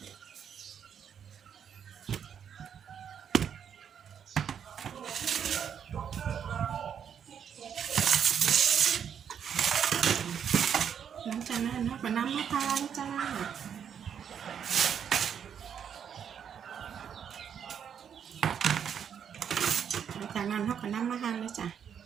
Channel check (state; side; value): quieter; left; 8.1 dB